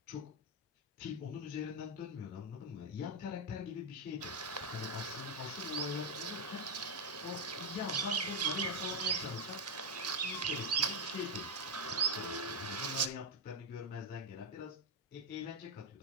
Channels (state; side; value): normal; both; correlation 0.02